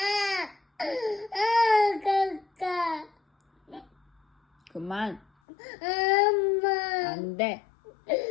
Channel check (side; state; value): right; drops out; at 5.2 s